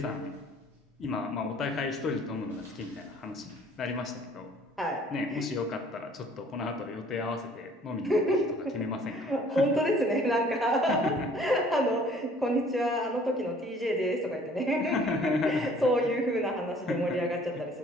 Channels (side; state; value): both; normal; correlation 0.55